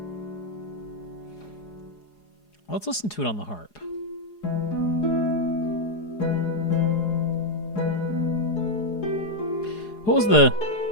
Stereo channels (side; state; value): right; late; 4.8 ms